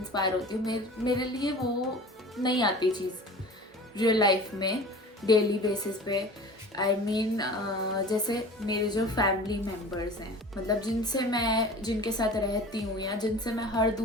होती हूँ, मेरे लिए वो नहीं आती चीज़ रियल लाइफ में डेली बेसिस पे. आई मीन जैसे मेरे जो फैमिली मेम्बर्स हैं, मतलब जिनके साथ रहती हूँ या जिनसे मैं हर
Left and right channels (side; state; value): both; normal; correlation 0.39